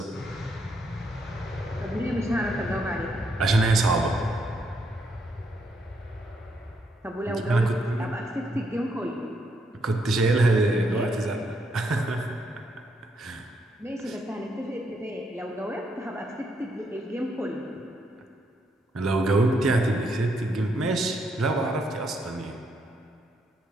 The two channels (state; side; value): normal; both; correlation 0.76